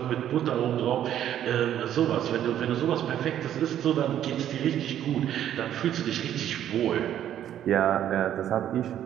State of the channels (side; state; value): left; quieter; 10.9 dB